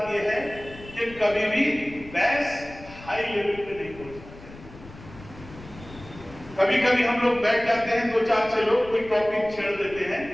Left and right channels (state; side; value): noise; left; rumble, 18 dB below the sound